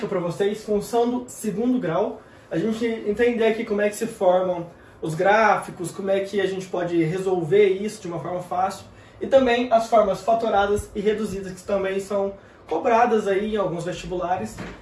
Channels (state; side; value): identical; both; correlation 1.00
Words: para vocês, função do segundo grau. A gente entender aqui como é que se formam os gráficos, como é que a gente pode resolver isso de uma forma fácil. E também as formas fatoradas e reduzidas, que também são cobradas aí em alguns vestibulares.